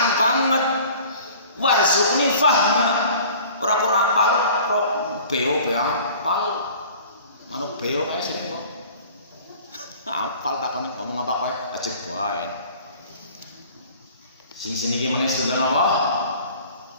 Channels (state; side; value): inverted; both; correlation -0.47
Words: banget. Warzuqni fahma. Ora apal beo apal. Manuk beo kae sering kok. Apal takone ngomong apa kae ajeg bae. Sing sini iki meneh sinten apa?